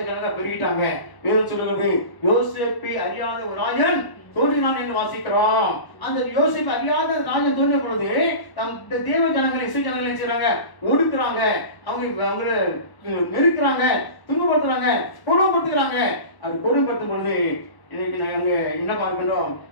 பெருகிட்டாங்க. வேதம் சொல்லுகிறது, யோசேப்பை அறியாத ஒரு ராஜன் தோன்றினான் என்று வாசிக்கிறோம். அந்த யோசேப்பு அறியாத ராஜன் தோன்றிய பொழுது தேவ ஜனங்களை, இஸ்ரவேல் ஜனங்களை செய்றாங்க, ஒடுக்குறாங்க, அவங்களை நெருக்கிறாங்க, துன்பப்படுத்துறாங்க, கொடுமைப்படுத்துகிறாங்க. அது கொடுமைப்படுத்தும் பொழுது இன்னைக்கு நாங்க என்ன பார்க்கின்றோம்?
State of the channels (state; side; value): late; right; 1.0 ms